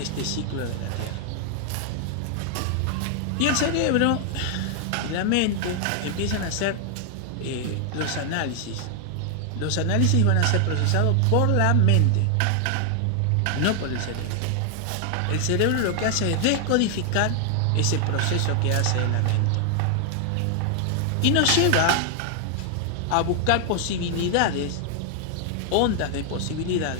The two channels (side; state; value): both; different; correlation 0.00